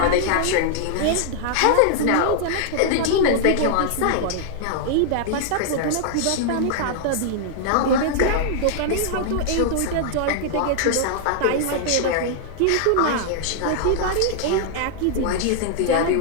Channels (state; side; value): different; both; correlation -0.01